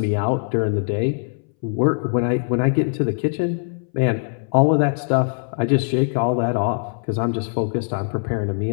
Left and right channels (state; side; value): silent; right; 63 dB below the other